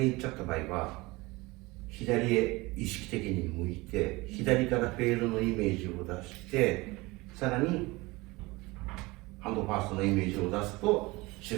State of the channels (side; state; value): left; quieter; 22.5 dB